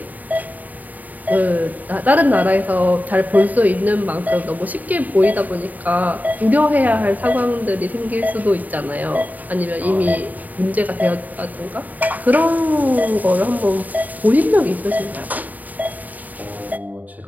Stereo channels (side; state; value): left; late; 0.080 ms